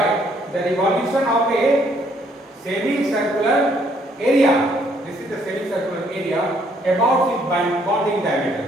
the revolution of a semicircular area. This is the semicircular area about its bonding diameter,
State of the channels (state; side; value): normal; both; correlation 0.67